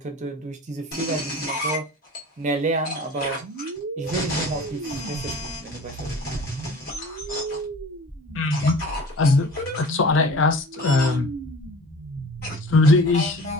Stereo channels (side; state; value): both; normal; correlation 0.42